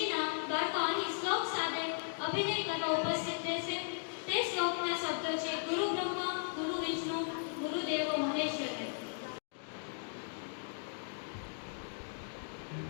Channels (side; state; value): right; silent; digital silence